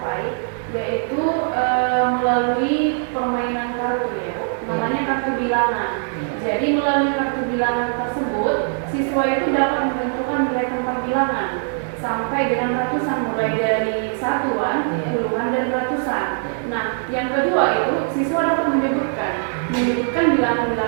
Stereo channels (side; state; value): left; silent; 61 dB below the other